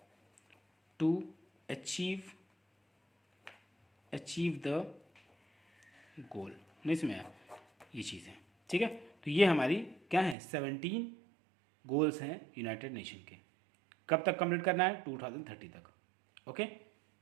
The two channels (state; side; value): drops out; left; at 10.4 s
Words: to achieve the goal. नहीं समझ आया, ये चीज़ है। ठीक है। तो ये हमारी क्या है, 17 गोल्स हैं यूनाइटेड नेशन के। कब तक कंप्लीट करना है, 2030 तक। ओके।